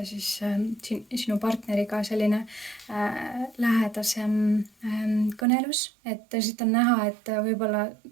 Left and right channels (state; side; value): drops out; left; at 5.5 s